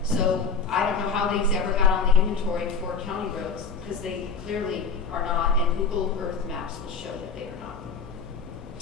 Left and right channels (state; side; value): quieter; right; 5.0 dB